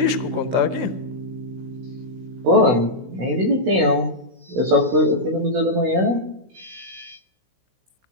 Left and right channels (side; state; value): left; late; 16 ms